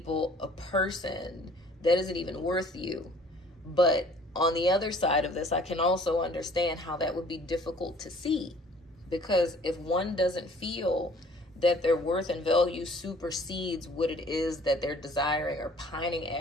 a person that isn't even worth you. But on the other side of this, I can also understand how that would be difficult to see, because if one doesn't feel that their worth and value supersedes what it is that they're desiring or pining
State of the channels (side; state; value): both; normal; correlation 0.54